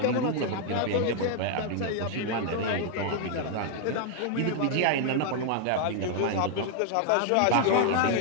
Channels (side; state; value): both; different; correlation 0.00